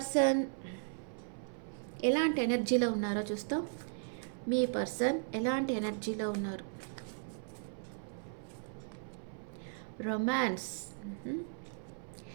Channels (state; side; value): silent; left; 53 dB below the other